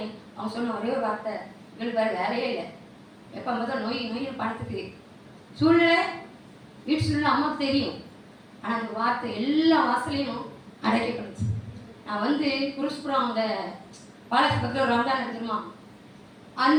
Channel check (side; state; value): both; identical; correlation 1.00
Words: அவங்க சொன்ன ஒரே ஒரு வார்த்தை, எங்களுக்கு வேறு வேலையே இல்லை, எப்போ தான் நோய் பணத்துக்கு சூழ்நிலை வீட்டு சூழ்நிலை அம்மாவுக்கு தெரியும். ஆனால் அந்த வார்த்தை எல்லா வாசலையும் அடைக்கப்படுச்சு. நான் குருஷ்புரம் அந்த பாலாஜி பக்கத்தில் ஒரு ரம்ஜான் எடுத்துருமா,